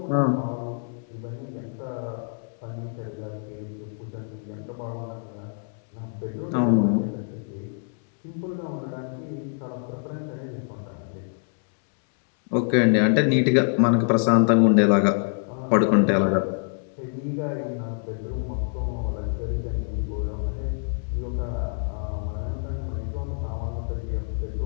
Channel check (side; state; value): right; silent; 61 dB below the other